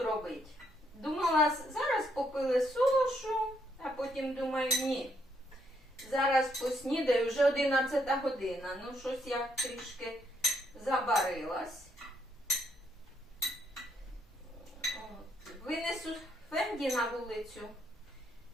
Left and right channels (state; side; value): normal; both; correlation 0.74